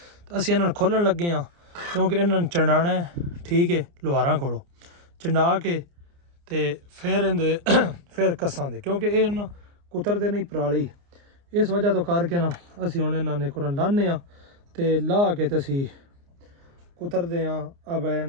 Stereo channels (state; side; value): late; left; 29 ms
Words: ਅਸੀਂ ਇਹਨਾਂ ਨੂੰ ਖੋਲਣ ਲੱਗੇ ਹਾਂ ਕਿਉਂਕਿ ਇਹਨਾਂ ਨੂੰ ਚੰਡਾਣਾ ਹੈ ਠੀਕ ਹੈ ਲੁਹਾਰਾਂ ਕੋਲੋਂ ਚੰਡਾ ਕੇ ਤੇ ਫਿਰ ਇਹਦੇ ਫਿਰ ਕੱਸਾਂ ਦੇ ਕਿਉਂਕਿ ਇਹ ਨਾ ਕੁਤਰਦੇ ਨਹੀਂ ਪਰਾਲੀ ਇਸ ਵਜ੍ਹਾ ਤੋਂ ਕਰਕੇ ਨਾ ਅਸੀਂ ਹੁਣ ਇਹਨਾਂ ਨੇ ਕੁਰਨ ਲਾਣੇ ਆ ਤੇ ਲਾ ਕੇ ਤੇ ਅਸੀਂ ਕੁਤਰਦੇ ਆ ਅਬ